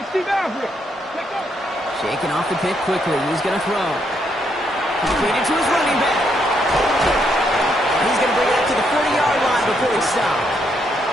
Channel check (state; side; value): normal; both; correlation 0.76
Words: Shaking off the pick quickly. He's going to throw. Completed to his running back. He's going to bring it up to the 40-yard line before he stops.